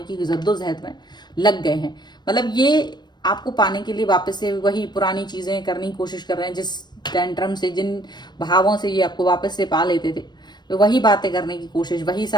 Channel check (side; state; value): right; late; 0.21 ms